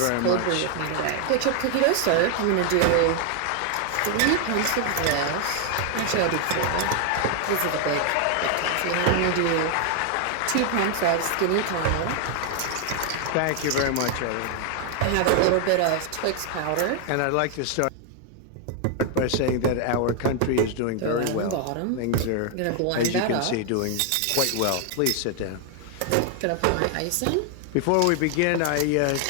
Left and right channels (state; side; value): different; both; correlation 0.00